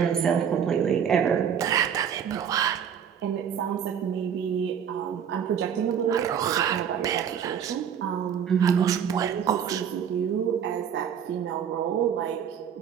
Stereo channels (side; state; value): left; quieter; 8.2 dB